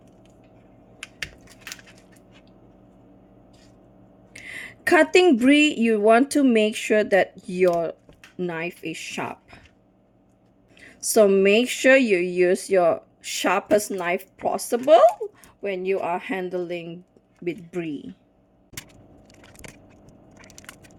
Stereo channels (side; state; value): both; identical; correlation 1.00